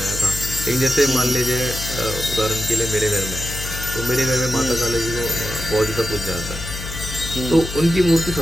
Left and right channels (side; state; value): left; noise; hum, 8 dB below the sound